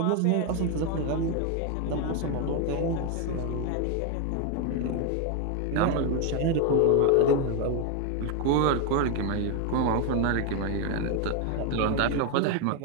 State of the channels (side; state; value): both; different; correlation 0.01